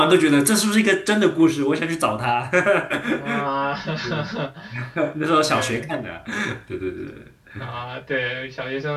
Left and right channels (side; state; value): both; identical; correlation 1.00